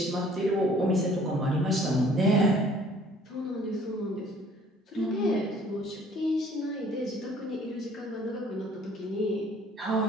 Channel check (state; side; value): normal; both; correlation 0.55